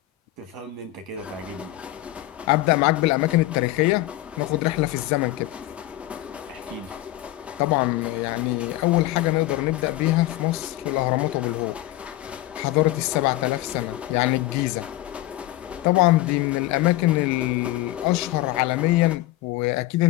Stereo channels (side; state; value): right; quieter; 16.5 dB